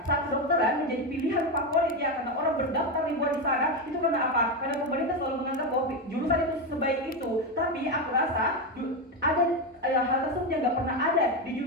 saat kedokteran menjadi pilihan favorit ya karena orang berdaftar ribuan di sana, itu karena apa? Karena pemerintah selalu menganggap bahwa jurusan itu sebaik itu. Tapi aku rasa ada hal tersebut yang nggak pernah ada di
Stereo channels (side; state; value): both; normal; correlation 0.11